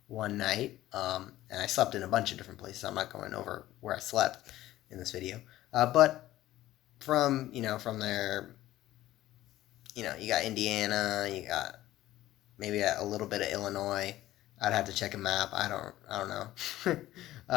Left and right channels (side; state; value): right; quieter; 15.0 dB